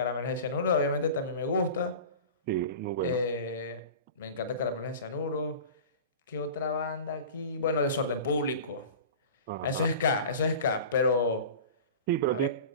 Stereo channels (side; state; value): both; inverted; correlation -0.35